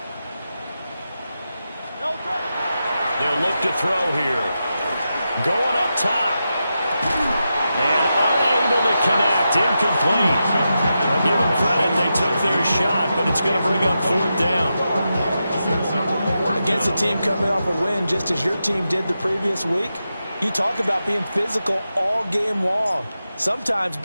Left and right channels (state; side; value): inverted; both; correlation -0.89